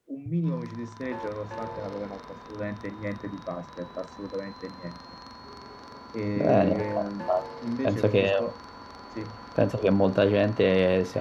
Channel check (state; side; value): identical; both; correlation 1.00